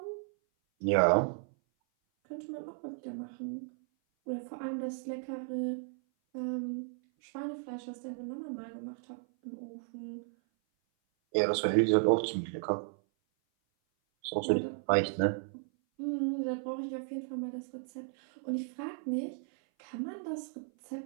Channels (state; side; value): silent; left; 55 dB below the other